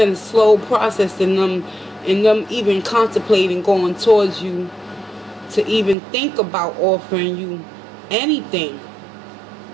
a slow process in them even contemplating going towards you, to even think about offering you anything,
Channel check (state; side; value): drops out; left; at 6.0 s